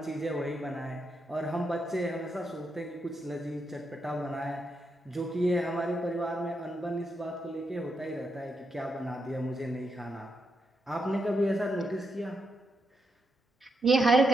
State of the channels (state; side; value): normal; both; correlation 0.82